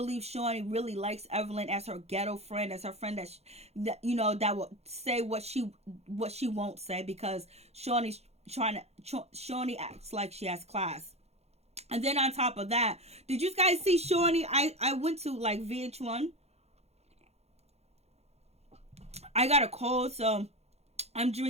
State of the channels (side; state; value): left; late; 0.31 ms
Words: Shawnee really likes Evelyn as her ghetto friend, as her friend that you know, that will say what she won't say, because Shawnee acts like she has class. And then on top of that, did you guys see Shawnee? I went to like VH1. I got a cold, so I'm